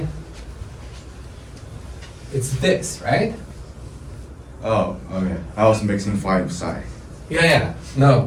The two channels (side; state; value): both; identical; correlation 1.00